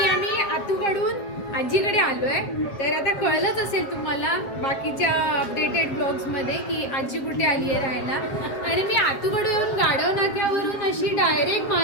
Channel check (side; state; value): right; late; 7.8 ms